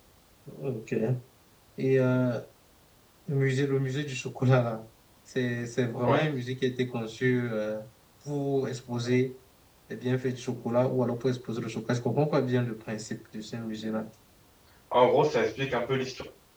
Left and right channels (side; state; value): both; identical; correlation 1.00